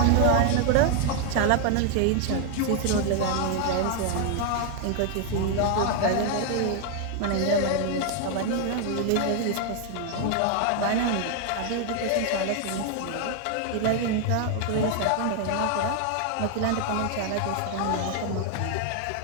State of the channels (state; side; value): different; both; correlation 0.00